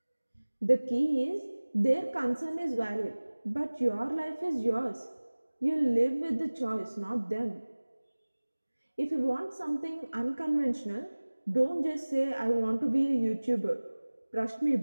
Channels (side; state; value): both; inverted; correlation -1.00